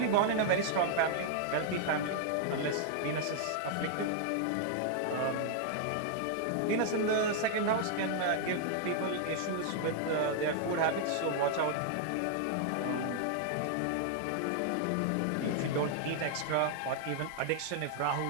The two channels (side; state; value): both; different; correlation -0.01